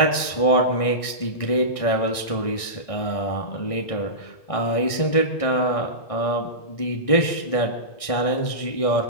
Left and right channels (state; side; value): late; right; 1.6 ms